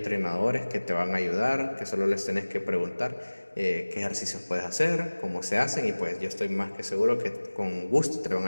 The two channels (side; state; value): both; inverted; correlation -1.00